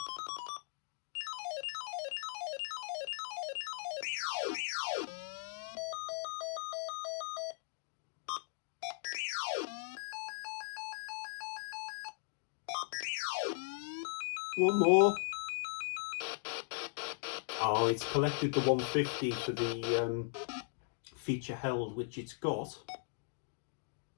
One more. Oh, it's collected the 150 for the feature held, which it's got.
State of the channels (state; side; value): silent; right; digital silence